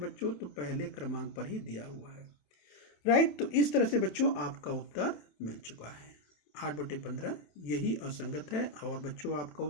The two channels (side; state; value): right; late; 27 ms